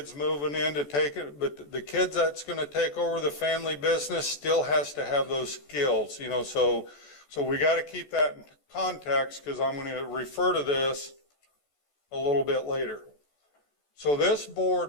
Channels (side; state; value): right; late; 14 ms